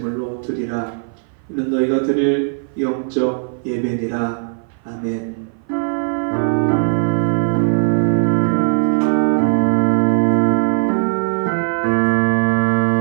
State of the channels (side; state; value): left; silent; 56 dB below the other